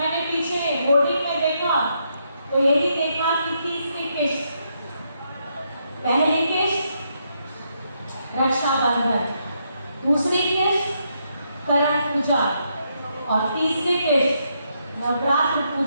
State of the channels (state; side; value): inverted; both; correlation -0.78